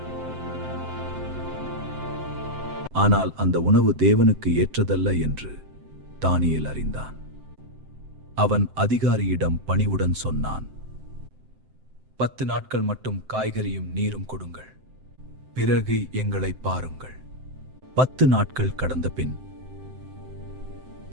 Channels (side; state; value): left; late; 7.7 ms